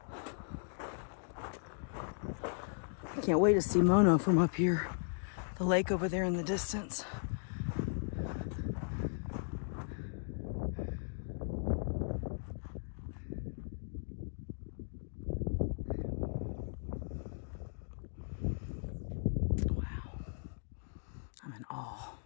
I can't wait to see Mono from up here. The lake over there in the distance. Wow. I'm in awe.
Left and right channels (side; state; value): right; silent; digital silence